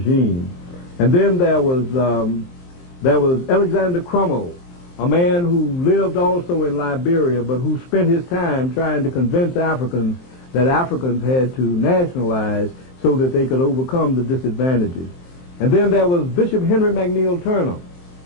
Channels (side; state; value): right; late; 23 ms